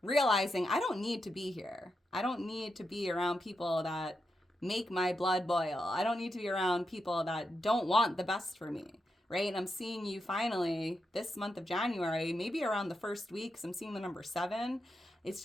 realizing I don't need to be here. I don't need to be around people that make my blood boil. I don't need to be around people that don't want the best for me, right? And I'm seeing you finally this month of January, maybe around the first week, 'cause I'm seeing the number 7.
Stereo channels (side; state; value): both; normal; correlation 0.86